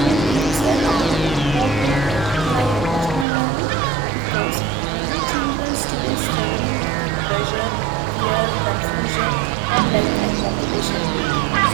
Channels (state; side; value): drops out; left; at 3.2 s